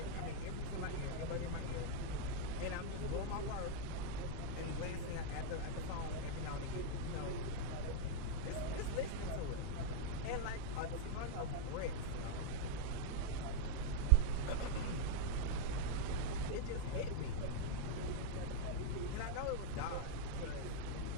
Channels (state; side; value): different; both; correlation -0.01